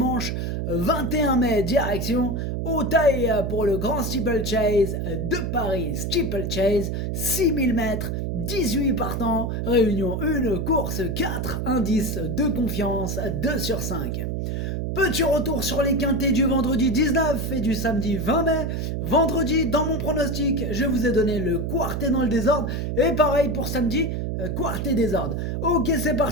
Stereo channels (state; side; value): noise; right; hum, 2 dB below the sound